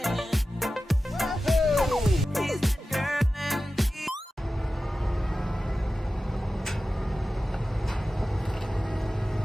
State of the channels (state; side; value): normal; both; correlation 0.94